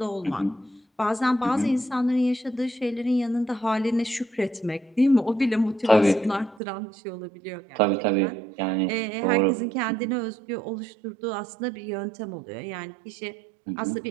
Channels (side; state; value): left; drops out; at 6.6 s